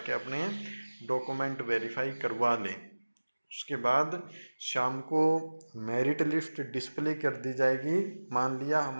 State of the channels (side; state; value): both; inverted; correlation -1.00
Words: अपने डॉक्यूमेंट वेरीफाई करवा ले। उसके बाद शाम को मेरिट लिस्ट डिस्प्ले कर दी जाएगी। मान लिया